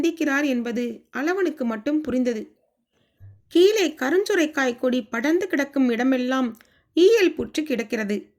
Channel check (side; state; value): both; identical; correlation 1.00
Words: என்பது அளவனுக்கு மட்டும் புரிந்தது. கீழே கருஞ்சுரைக்காய் கொடி படர்ந்து கிடக்கும் இடமெல்லாம் ஈயல் புற்று கிடக்கிறது.